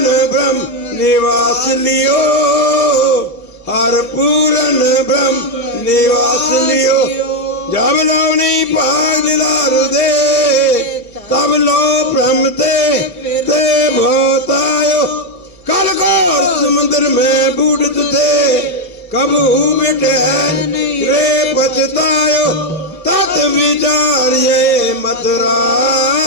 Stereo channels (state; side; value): noise; right; hum, 30 dB below the sound